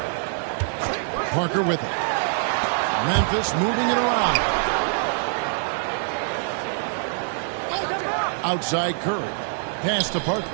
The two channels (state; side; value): silent; left; digital silence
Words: Parker with it. Memphis moving it around. Outside Curry. Pass to Parker.